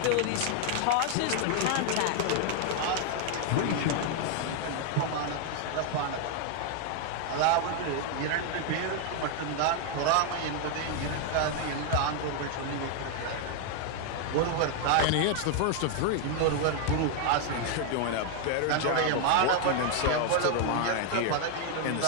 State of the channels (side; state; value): both; different; correlation 0.00